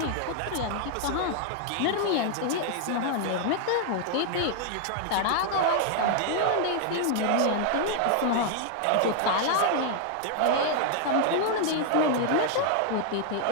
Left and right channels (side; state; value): both; different; correlation 0.00